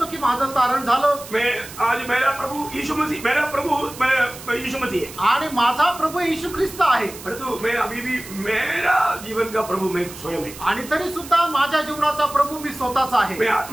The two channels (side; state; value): right; noise; hiss, 15 dB below the sound